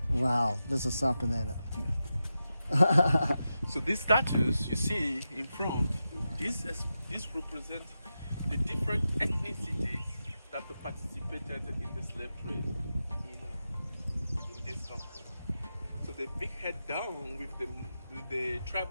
Wow, this is something, ain't it? So these statues you see in front, this represents the different ethnicities that participated in the slave trade in this country. So the big head down with the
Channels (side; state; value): both; inverted; correlation -0.90